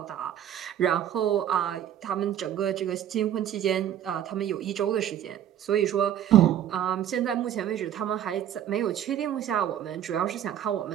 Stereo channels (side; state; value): left; quieter; 10.6 dB